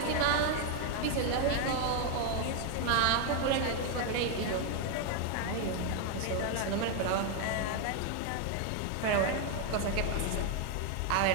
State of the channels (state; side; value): different; both; correlation 0.00